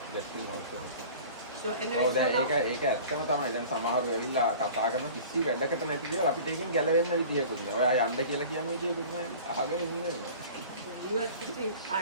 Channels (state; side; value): inverted; both; correlation -0.42